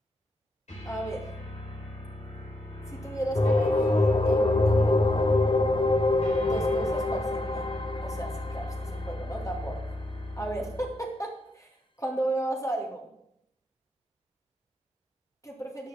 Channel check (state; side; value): normal; both; correlation 0.80